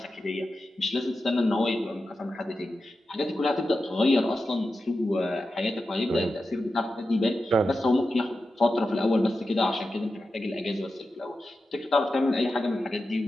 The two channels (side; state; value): both; normal; correlation 0.91